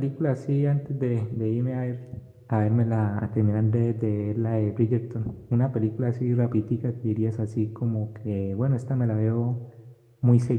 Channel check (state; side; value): identical; both; correlation 1.00